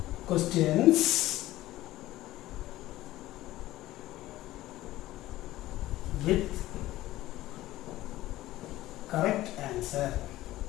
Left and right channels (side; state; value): right; quieter; 16.0 dB